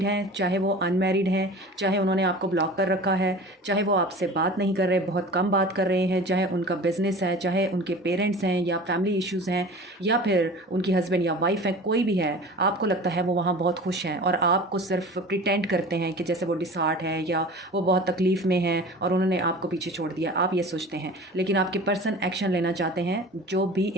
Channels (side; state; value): both; normal; correlation 0.39